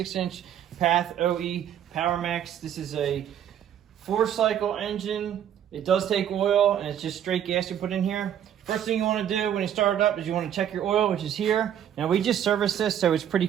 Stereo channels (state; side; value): quieter; left; 9.9 dB